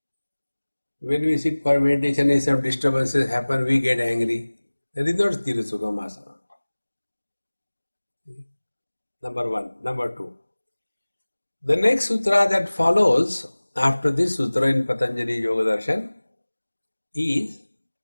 When we sit for meditation and some disturbances happen, we get angry. That is not Sthira Sukham Asana. Number one. Number two. The next sutra that follows after this sutra in Patanjali Yoga Darshan is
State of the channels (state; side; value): inverted; both; correlation -1.00